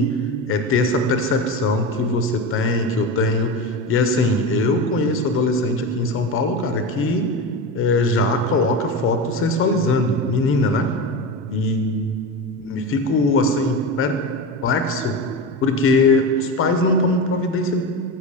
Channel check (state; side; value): normal; both; correlation 0.22